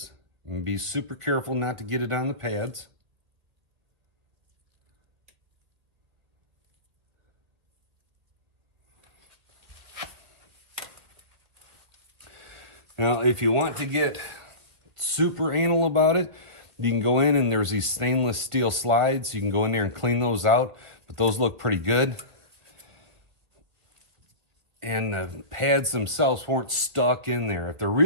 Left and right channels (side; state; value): left; late; 2.1 ms